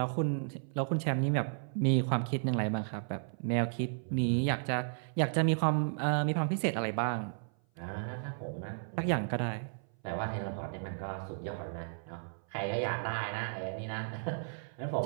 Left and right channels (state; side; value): silent; left; 55 dB below the other